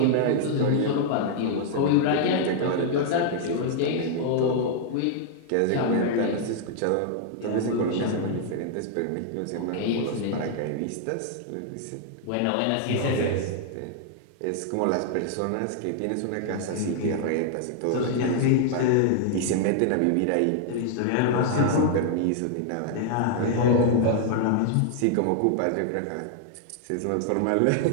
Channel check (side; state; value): both; different; correlation 0.00